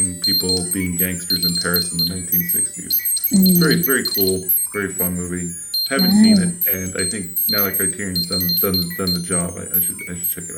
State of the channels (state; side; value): identical; both; correlation 1.00